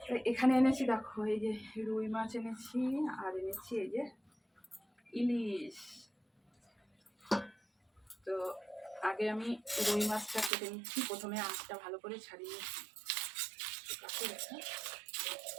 এখানে এনেছি, দেখো এই যে রুই মাছ এনেছি, আর এনেছি এই যে ইলিশ। তো আগে আমি রুই মাছটা কেটে নিচ্ছি। প্রথমে আঁশটা ভালো করে ছাড়িয়ে নিচ্ছি।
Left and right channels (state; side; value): drops out; left; at 10.5 s